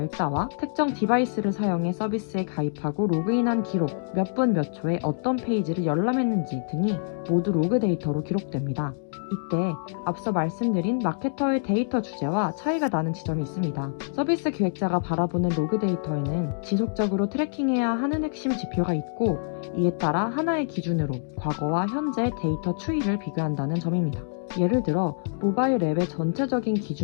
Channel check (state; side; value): silent; right; digital silence